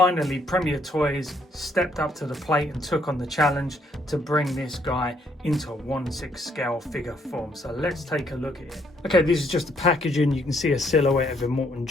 Premier Toys stepped up to the plate and took on the challenge to bring this guy into a 1/6 scale figure form. So let's take a look at it. Okay, this is just the packaging. You can see a silhouette of Immortan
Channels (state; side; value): normal; both; correlation 0.69